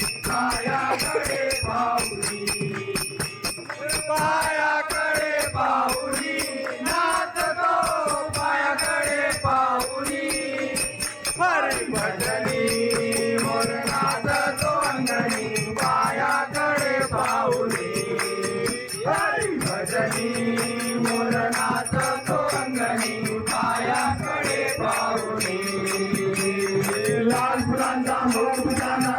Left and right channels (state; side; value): identical; both; correlation 1.00